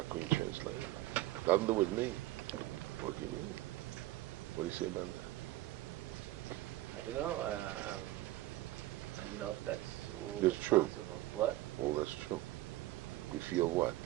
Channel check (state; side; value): quieter; left; 16.5 dB